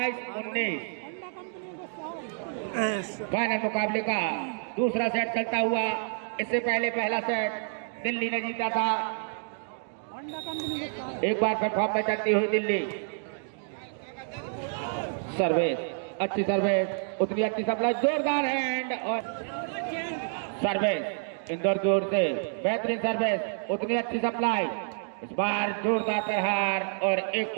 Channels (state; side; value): silent; left; digital silence